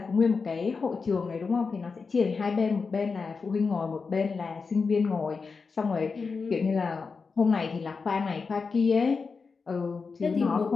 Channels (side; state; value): right; quieter; 4.8 dB